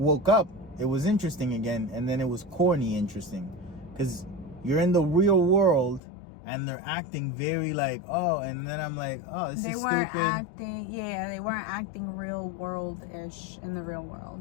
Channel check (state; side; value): drops out; right; at 6.0 s